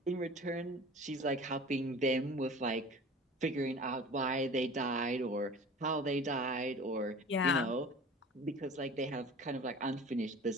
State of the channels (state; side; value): normal; both; correlation 0.40